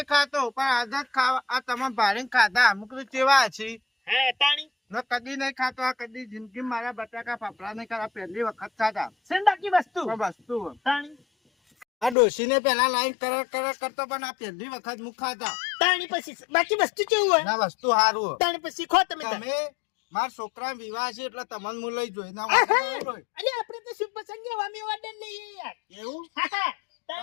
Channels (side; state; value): right; drops out; at 12.2 s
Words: ખાતો પણ આજ જ ખાવા આ તમે ભારે ખાધા અમુક તો કેવા છે હા તાણી મેં કદી નહીં ખાતો આ કદી જિંદગી મારા બટાકા ફાફડા નહીં ખાતા પહેલી વખત ખાધા સન બાકી વસ્તુ પણ વસ્તુ તાણી આ ડોશીને પેલા લાઈન કર કરતો પણ આ પહેલી વખત મુખ ખાધા તાણી પછી બાકી વસ્તુ કેવું હોય ના વસ્તુ સારું તાણી પછી ખો તમે તાર. તમે મારા છોકરા વિવાહ છે એટલે તમને હું લઈ જોઈ ના અરે આપણે તો શુભ પ્રસંગે વામી ઓર્ડર લઈએ યાર એવું હા, હા.